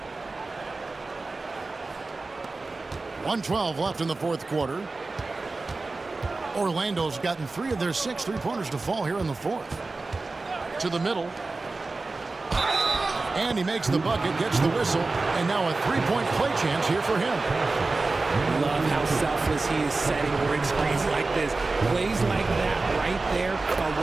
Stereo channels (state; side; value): quieter; left; 3.5 dB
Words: 1:12 left in the fourth quarter. Orlando's gotten 3 of their 6 three-pointers to fall here in the fourth. To the middle. And he makes the bucket, gets the whistle, and now a 3-point play chance here for him. Love how selfless he is setting break screens like this. Plays like that right there are